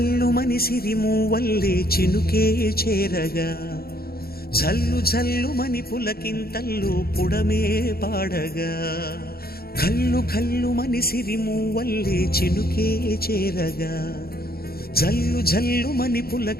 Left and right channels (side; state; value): right; late; 0.44 ms